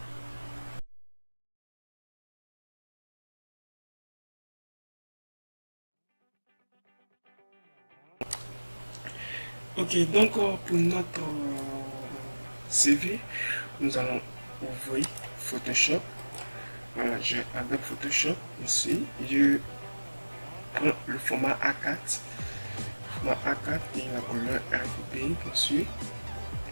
Ok, donc pour notre CV, nous allons ouvrir Photoshop. Voilà, j'ai Adobe Photoshop ici. Je prends le format A4. Format A4 et la couleur RGB, bien sûr.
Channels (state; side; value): inverted; both; correlation -1.00